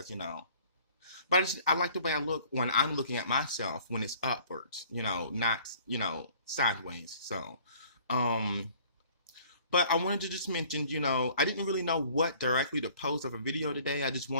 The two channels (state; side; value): inverted; both; correlation -0.54